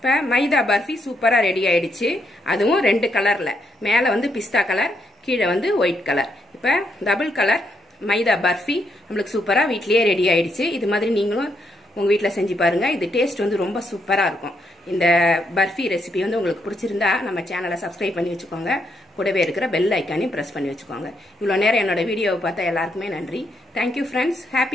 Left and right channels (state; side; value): normal; both; correlation 0.77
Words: மைதா பர்ஃபி சூப்பராக ரெடி ஆயிடுச்சு. அதுவும் 2 கலரில், மேலே வந்து பிஸ்தா கலர், கீழே வந்து ஒயிட் கலர். இப்போ டபுள் கலர் மைதா பர்ஃபி நம்மளுக்கு சூப்பராக வீட்லேயே ரெடி ஆயிடுச்சு. இது மாதிரி நீங்களும் உங்கள் வீட்டில் செஞ்சு பாருங்கள். இது டேஸ்ட் வந்து ரொம்ப சூப்பராக இருக்கும். இந்த பர்ஃபி ரெசிபி வந்து உங்களுக்கு பிடிச்சிருந்தா நம்ம சேனலை சப்ஸ்கிரைப் பண்ணி வச்சுக்கோங்க. கூடவே இருக்கிற பெல் ஐக்கானையும் ப்ரெஸ் பண்ணி வச்சுக்கோங்க. இவ்வளோ நேரம் என்னோட வீடியோவை பார்த்தா எல்லாருக்குமே நன்றி. Thank you friends.